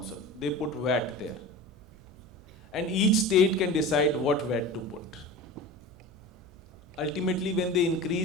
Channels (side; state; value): right; noise; hum, 26 dB below the sound